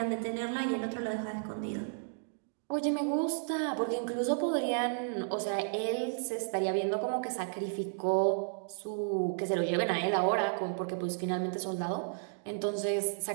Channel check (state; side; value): silent; left; digital silence